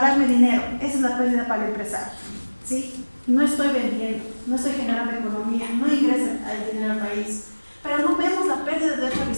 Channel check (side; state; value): both; inverted; correlation -1.00